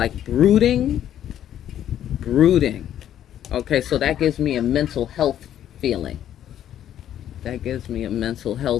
brooding. Okay, so that gives me a mental health feeling. That gives me a mental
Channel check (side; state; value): right; quieter; 10.9 dB